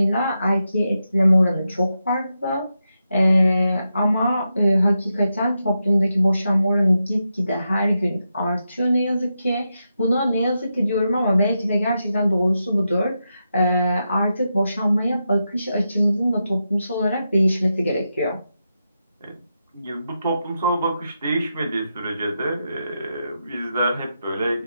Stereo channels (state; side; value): inverted; both; correlation -0.87